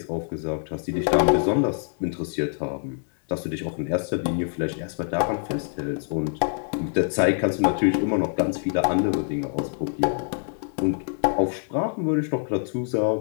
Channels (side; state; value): right; silent; digital silence